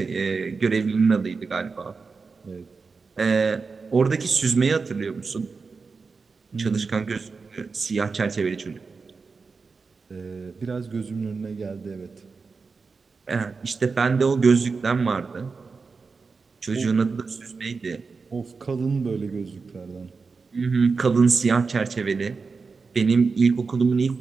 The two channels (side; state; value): left; quieter; 4.7 dB